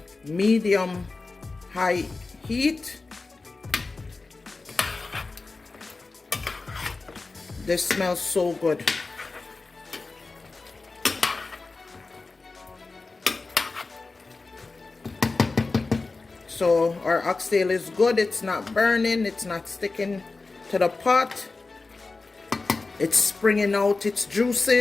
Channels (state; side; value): quieter; right; 3.7 dB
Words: medium high heat. This smells so good. So our oxtail is good. It's not burning. It's not sticking to the pot. It's springing out its